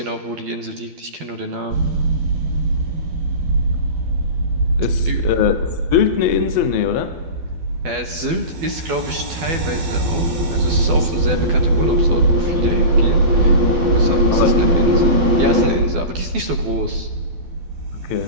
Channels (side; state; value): left; late; 12 ms